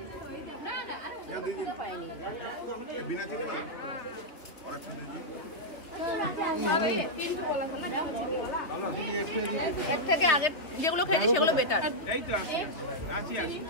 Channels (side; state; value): right; late; 3.0 ms